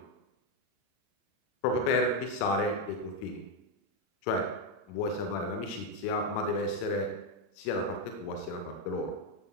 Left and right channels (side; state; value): right; late; 35 ms